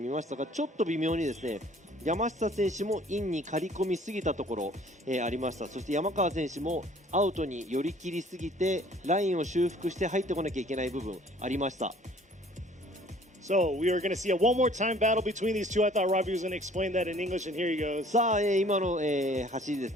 ましたが、ちょっと微妙にですね、山下選手もインに刈り込みすぎたところ、ありました。そして山川選手もアウトに寄り切りすぎてラインを修復して入ってこなきゃいけない部分ありました。So we are going to see a one more time battle between these two. I thought Robbie was going to explain that in English, and here he goes. さあ、今の、走りです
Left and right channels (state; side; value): normal; both; correlation 0.54